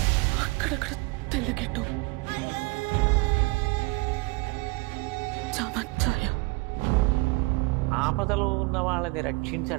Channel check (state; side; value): quieter; left; 25.5 dB